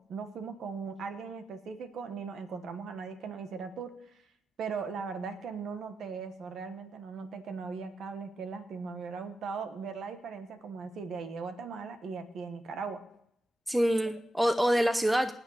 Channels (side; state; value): both; normal; correlation 0.89